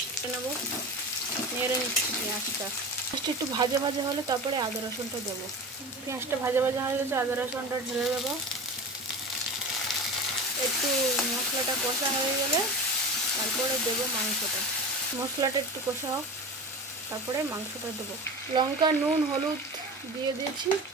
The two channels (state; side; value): normal; both; correlation 0.30